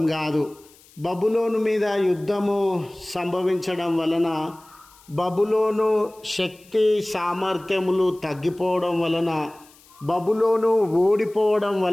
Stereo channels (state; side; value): noise; left; hiss, 27 dB below the sound